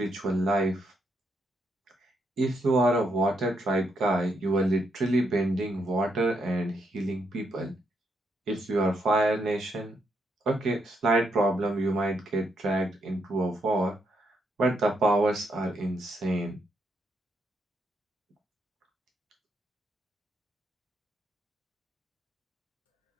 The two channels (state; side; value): normal; both; correlation 0.78